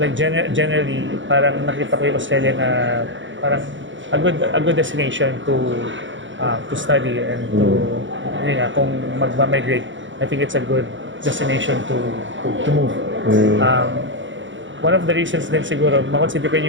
generally, parang nakita ko yung Australia na parang a good destination to study and to, kung magma-migrate, I think it's a good destination to move. One of the reasons din siguro, makonsider ko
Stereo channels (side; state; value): left; late; 0.55 ms